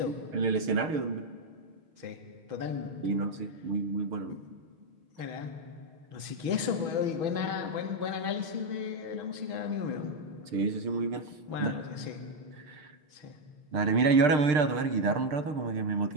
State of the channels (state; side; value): late; left; 6.7 ms